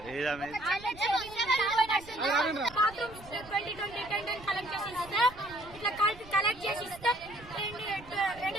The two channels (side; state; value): right; noise; rumble, 19 dB below the sound